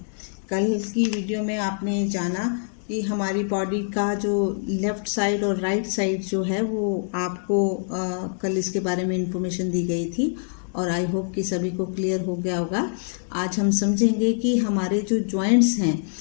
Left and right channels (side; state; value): right; silent; digital silence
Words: कल की वीडियो में आपने जाना कि हमारी बॉडी का जो लेफ़्ट साइड और राइट साइड जो है वो आपको कल इसके बारे में इंफॉर्मेशन दी गई थी और आई होप कि सभी को क्लियर हो गया होगा। आज हम समझेंगे कि हमारे जो जॉइंट्स हैं,